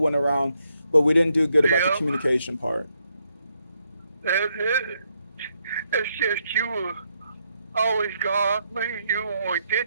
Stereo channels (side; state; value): both; inverted; correlation -0.78